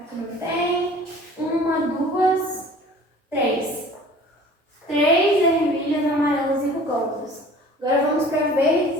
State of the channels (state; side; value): normal; both; correlation 0.47